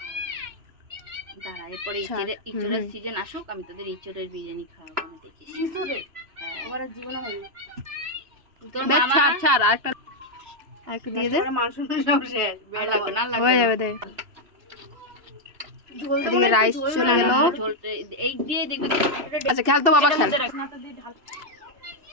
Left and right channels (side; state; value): left; late; 3.0 ms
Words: দাঁড়া, এরপরে ইঁচড়ের সিজন আসুক, আমি তোদের ইঁচড়ের বিরিয়ানি খাওয়াবো না, দেখিস। ইঁচড়ের আমার জীবনে হয়নি। তোর মামা ছাড় আরেকটা দিয়ে দে, মাংস শেষ, আর লাগবে না, হয়ে যাবে দে। এদিকে রাইস চলে গেল, এই দিয়ে দেখবি। আচ্ছা খেল তো বাবা, খেল।